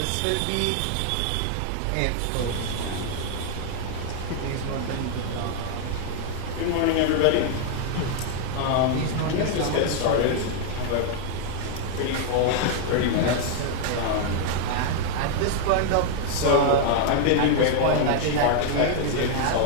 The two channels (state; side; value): different; both; correlation 0.00